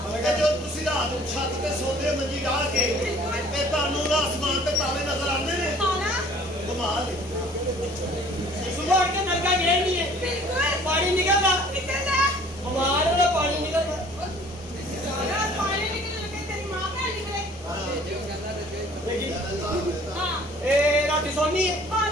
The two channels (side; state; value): both; normal; correlation 0.53